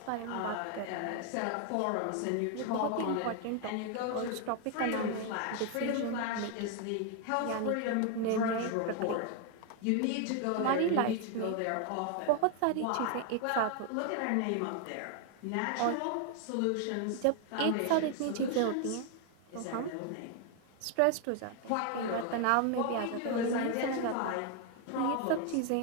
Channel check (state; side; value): different; both; correlation 0.01